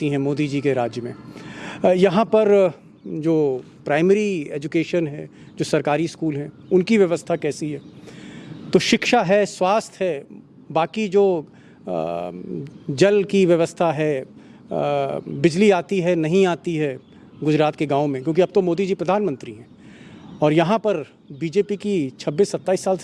हैं मोदी जी के राज्य में। यहाँ पर जो प्राइमरी एजुकेशन है, जो सरकारी स्कूल हैं, उनकी व्यवस्था कैसी है। तो शिक्षा है, स्वास्थ्य है, बाकी जो जल की व्यवस्था है, बिजली आती है नहीं आती है गुजरात के गाँव में, क्योंकि अब तो मोदी जी प्रधानमंत्री हैं और यहाँ पर बीजेपी की 26-27 साल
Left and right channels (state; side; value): identical; both; correlation 1.00